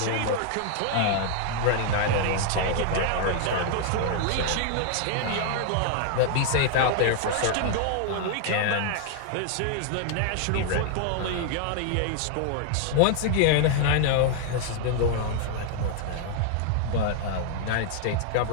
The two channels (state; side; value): different; both; correlation 0.00